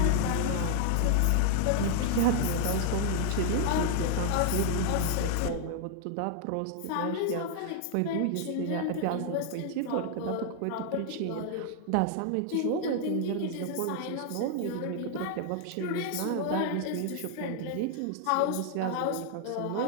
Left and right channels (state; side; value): different; both; correlation -0.01